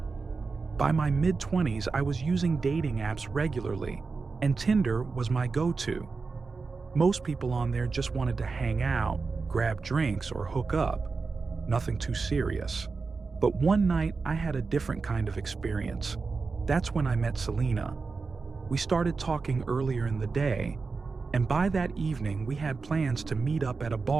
By my mid-20s, I was using dating apps regularly, and Tinder was my go-to. Most people on there just wanted to hang out, grab drinks, or hook up. Nothing too serious. But one night, I had a different kind of experience. That's when I met Selena. We started talking earlier in the day, and by that evening, we had plans to meet up at a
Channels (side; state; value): left; quieter; 4.4 dB